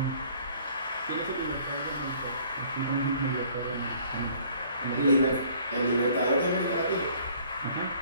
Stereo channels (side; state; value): both; inverted; correlation -0.57